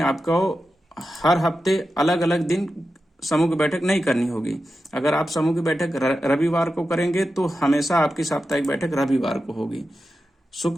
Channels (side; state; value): both; normal; correlation 0.91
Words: हर हफ्ते अलग अलग दिन समूह की बैठक नहीं करनी होगी। अगर आप समूह की बैठक रविवार को करेंगे तो हमेशा आपकी साप्ताहिक बैठक रविवार को होगी।